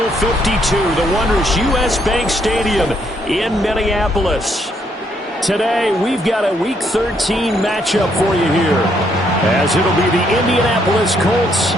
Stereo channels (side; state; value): both; normal; correlation 0.72